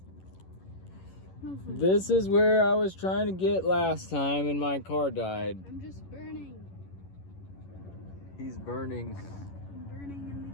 This is where I was trying to get last time and my car died. I'm just burning. He's burning. I'm burning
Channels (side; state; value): right; late; 11 ms